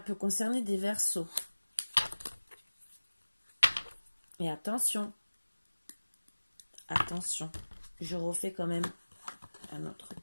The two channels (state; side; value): inverted; both; correlation -1.00